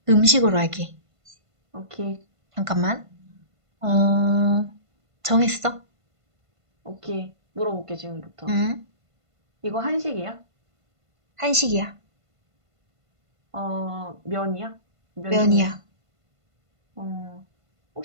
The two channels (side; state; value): left; late; 1.5 ms